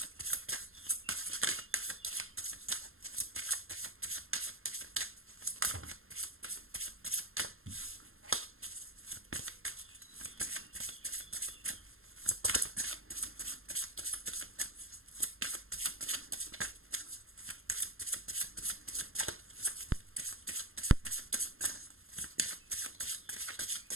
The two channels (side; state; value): left; late; 0.61 ms